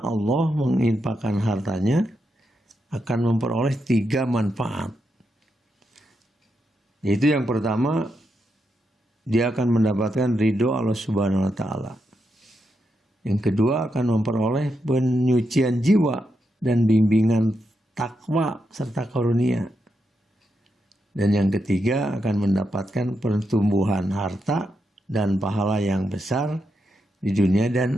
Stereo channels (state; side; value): normal; both; correlation 0.84